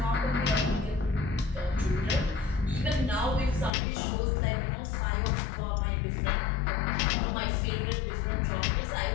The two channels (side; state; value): right; drops out; at 3.7 s